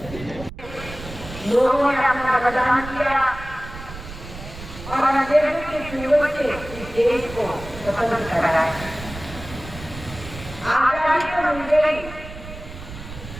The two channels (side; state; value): right; noise; rumble, 13 dB below the sound